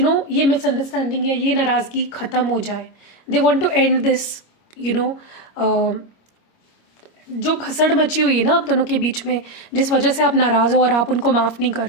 ये मिसअंडरस्टैंडिंग या ये नाराज़गी ख़त्म हो जाए। They want to end this, you know जो भसड़ मची हुई है ना आप दोनों के बीच में, जिस वजह से आप नाराज़ हो और आप उनको माफ़ नहीं कर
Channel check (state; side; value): late; right; 25 ms